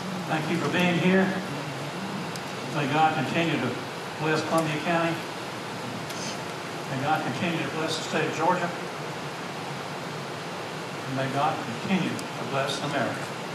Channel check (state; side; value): identical; both; correlation 1.00